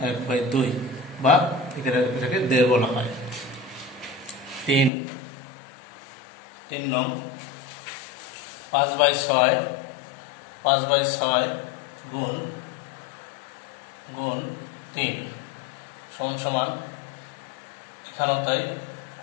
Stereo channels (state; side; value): drops out; right; at 4.9 s